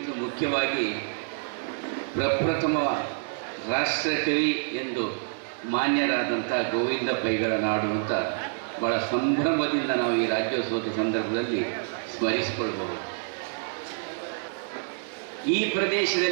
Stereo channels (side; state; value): left; silent; digital silence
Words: ಮುಖ್ಯವಾಗಿ ಪ್ರಪ್ರಥಮ ರಾಷ್ಟ್ರಕವಿ ಎಂದು ಮಾನ್ಯರಾದಂಥ ಗೋವಿಂದ ಪೈಗಳ ನಾಡು ಅಂತ ಭಾಳ ಸಂಭ್ರಮದಿಂದ ನಾವು ಈ ರಾಜ್ಯೋತ್ಸವದ ಸಂದರ್ಭದಲ್ಲಿ ಸ್ಮರಿಸಿಕೊಳ್ಬಹುದು. ಈ